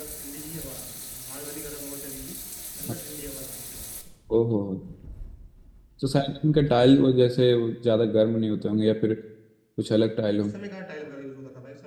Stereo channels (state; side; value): identical; both; correlation 1.00